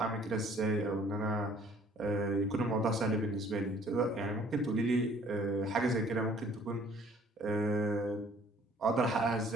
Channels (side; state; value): both; normal; correlation 0.57